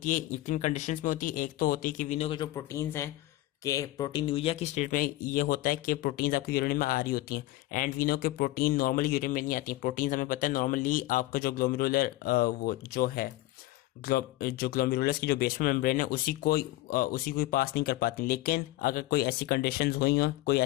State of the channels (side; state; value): right; quieter; 17.2 dB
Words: है, तीन कंडीशंस में होती है। एक तो होती है कि विनो के जो प्रोटीन्स हैं कि प्रोटीन यूरिया की स्टेट में ये होता है कि प्रोटीन्स आपके यूरिन में आ रही होती हैं, एंड वी नो के प्रोटीन नॉर्मली यूरिन में नहीं आती हैं। प्रोटीन्स हमें पता है नॉर्मली आपका जो ग्लोमेरुलर वो जो है जो ग्लोमेरुलस की जो बेसमेंट मेम्ब्रेन है उसी को पास नहीं कर पाती। लेकिन अगर कोई ऐसी कंडीशंस हुई हो, कोई